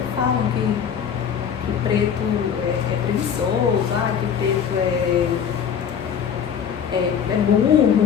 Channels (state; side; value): quieter; right; 7.8 dB